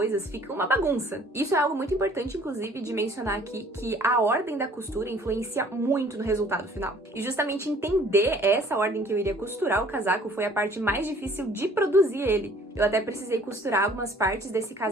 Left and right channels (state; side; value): normal; both; correlation 0.55